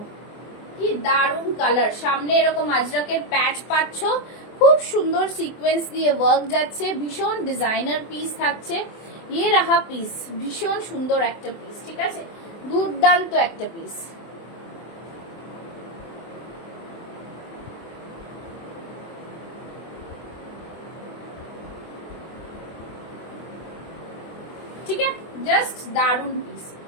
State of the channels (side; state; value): right; late; 24 ms